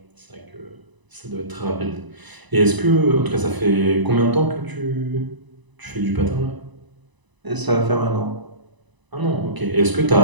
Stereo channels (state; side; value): late; left; 1.0 ms